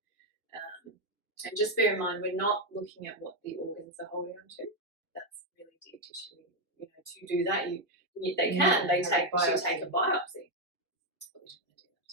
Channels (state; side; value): normal; both; correlation 0.03